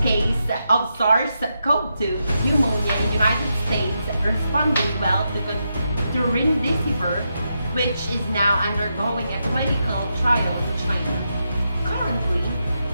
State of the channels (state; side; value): inverted; both; correlation -0.85